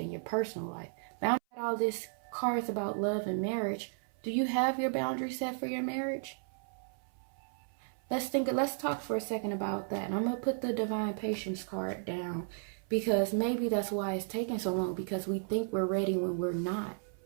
your personal life. Boundaries. All this cards about love and marriage. Do you have your boundaries set for your marriage? Let's talk for a second about that. And I'm gonna put the Divine Patience card down, because maybe that's why it's taking so long, because we think we're ready when we're not.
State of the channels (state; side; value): silent; left; 55 dB below the other